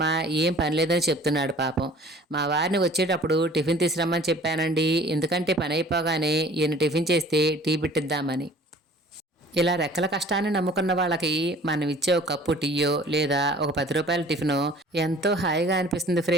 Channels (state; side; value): normal; both; correlation 0.49